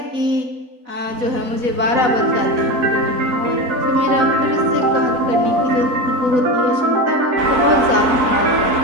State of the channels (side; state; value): left; late; 4.0 ms